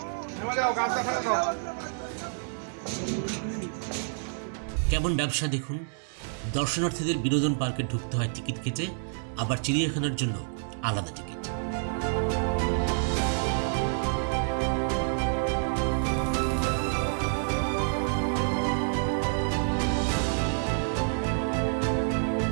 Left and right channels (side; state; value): left; silent; digital silence